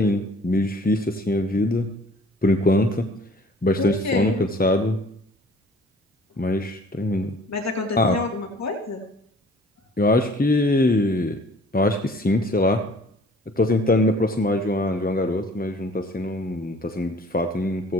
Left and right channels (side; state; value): both; normal; correlation 0.52